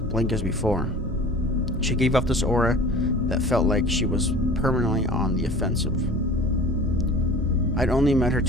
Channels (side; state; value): both; normal; correlation 0.42